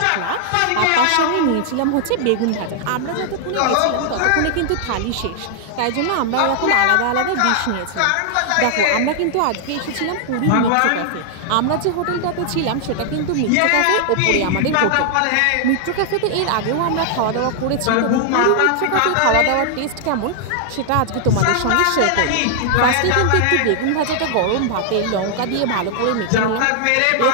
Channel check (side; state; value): both; different; correlation 0.00